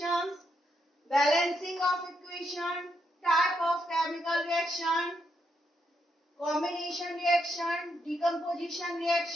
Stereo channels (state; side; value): normal; both; correlation 0.79